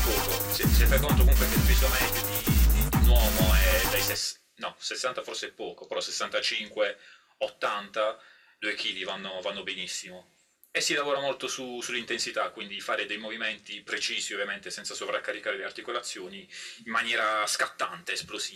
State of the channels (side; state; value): both; identical; correlation 1.00